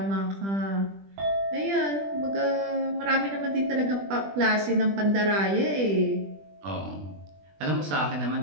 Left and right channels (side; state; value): left; late; 20 ms